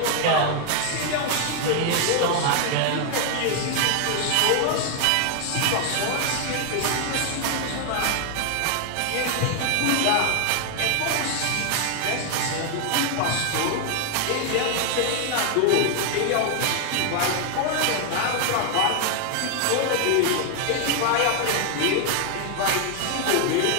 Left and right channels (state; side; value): different; both; correlation 0.00